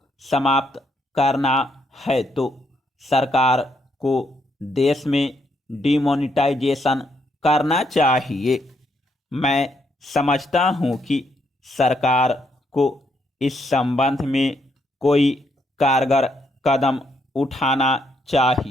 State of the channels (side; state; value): both; normal; correlation 0.75